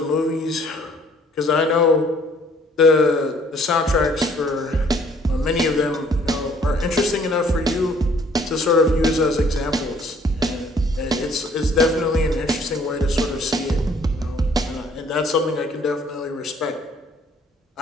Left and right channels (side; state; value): both; normal; correlation 0.60